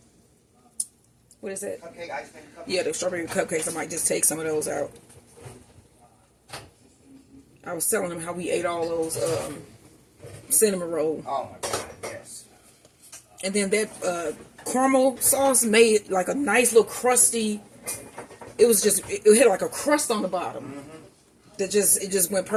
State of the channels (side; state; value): both; identical; correlation 1.00